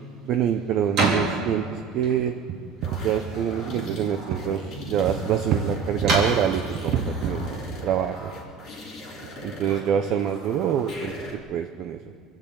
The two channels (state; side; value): quieter; left; 6.6 dB